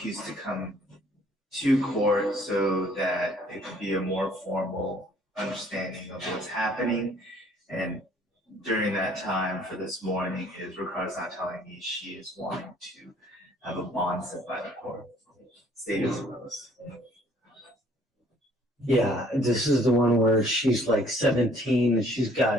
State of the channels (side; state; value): both; normal; correlation 0.59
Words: to come to court so that it could be a more formal understanding of what's happening. And during that time for this morning is Ricardo's not telling me she is wanting to have a bond set by the court. State as opposed. Yeah, this is the one where she's like 17 and she's